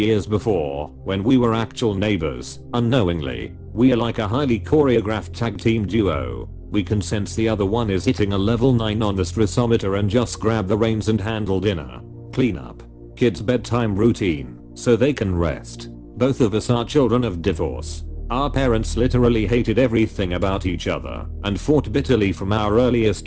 before, when we were actual neighbors, unknowingly. We are like a highly choreographed tag team duo. We can sense the other one is hitting a level 9 on the stressometer and just grab the reins and handle dinner, cleanup, kids' bedtime routine, so they can rest. Both of us are children of divorce. Our parents literally hated everything about each other and fought bitterly from our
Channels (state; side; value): identical; both; correlation 1.00